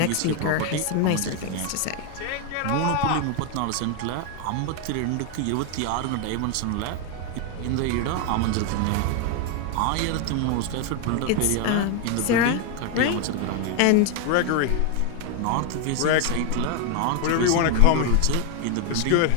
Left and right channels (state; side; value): different; both; correlation 0.01